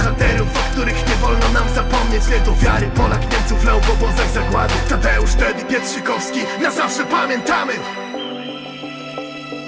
o których nie wolno nam zapomnieć. Wielką wiary Polak Niemców lał w obozach zagłady. Tadeusz, Teddy Pietrzykowski, na zawsze pamiętamy.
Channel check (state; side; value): identical; both; correlation 1.00